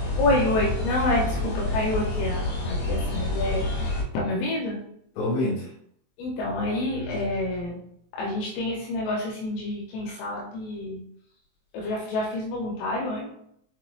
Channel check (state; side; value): late; right; 23 ms